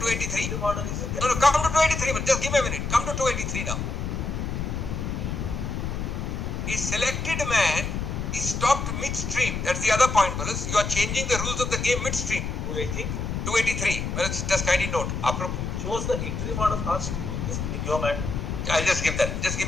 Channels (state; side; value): noise; left; rumble, 3 dB below the sound